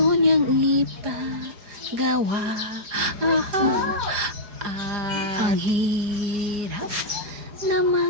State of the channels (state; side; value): late; left; 4.8 ms